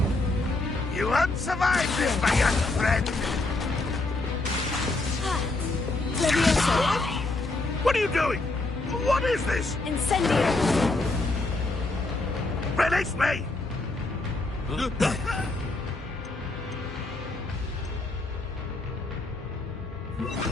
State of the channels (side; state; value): right; quieter; 3.1 dB